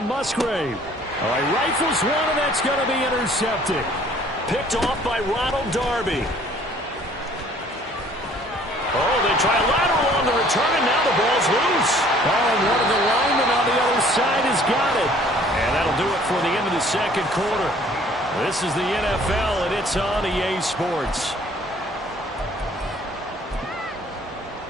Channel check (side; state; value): both; normal; correlation 0.56